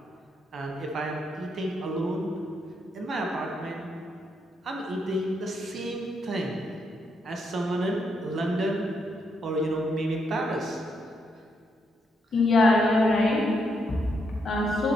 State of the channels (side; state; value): both; normal; correlation 0.78